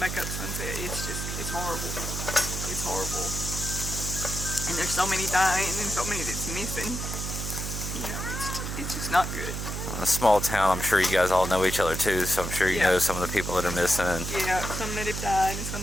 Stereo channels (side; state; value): right; noise; hum, 4 dB below the sound